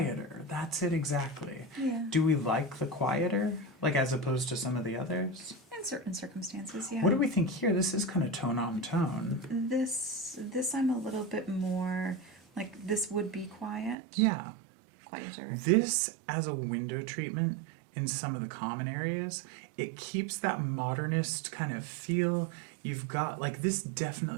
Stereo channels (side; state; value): left; drops out; at 14.0 s